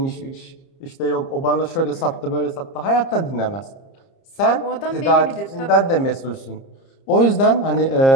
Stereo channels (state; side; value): late; right; 30 ms